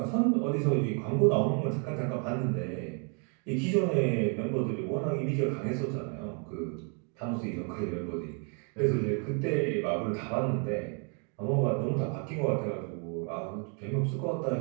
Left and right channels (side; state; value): left; quieter; 39.0 dB